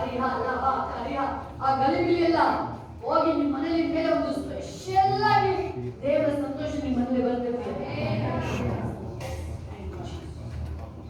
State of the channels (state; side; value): identical; both; correlation 1.00